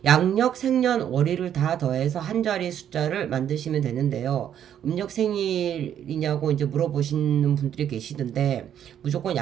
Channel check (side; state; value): left; quieter; 9.8 dB